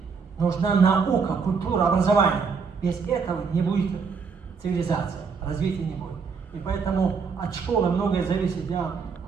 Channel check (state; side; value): quieter; left; 5.4 dB